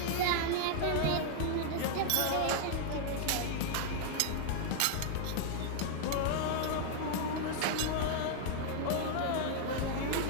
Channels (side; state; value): both; different; correlation -0.01